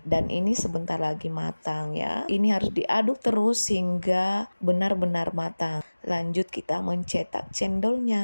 dan ini sebentar lagi matang ya. Ini harus diaduk terus hingga benar-benar matang. Lanjut kita mencetak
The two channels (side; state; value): both; inverted; correlation -1.00